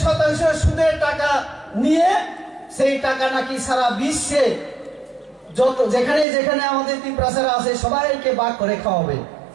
সুদের টাকা নিয়ে সেই টাকা নাকি সারা বিশ্বে যত যেখানে যেখানে আমাদের ত্রিপুরাসারা আছে সবাইকে ভাগ করে খাওয়াবে।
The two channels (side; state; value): left; drops out; at 6.2 s